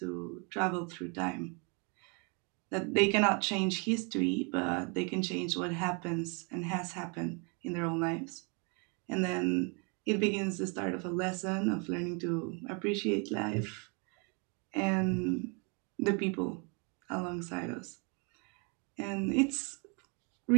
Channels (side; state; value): left; quieter; 34.0 dB